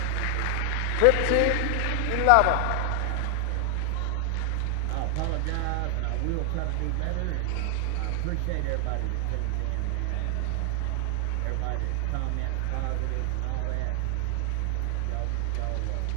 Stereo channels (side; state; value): both; different; correlation 0.00